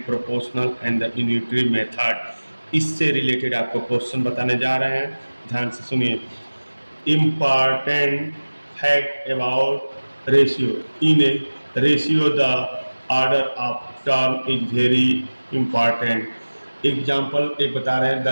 proportional and the unitary method. इससे रिलेटेड आपको क्वेश्चन बताने जा रहे हैं, ध्यान से सुनिए। Important fact about ratio. In ratio the order of term is very important. Example एक बता रहे हैं, the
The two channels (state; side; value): inverted; both; correlation -1.00